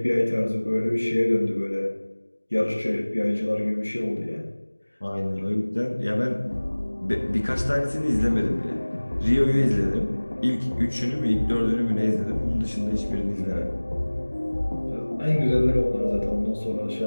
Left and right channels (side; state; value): both; inverted; correlation -1.00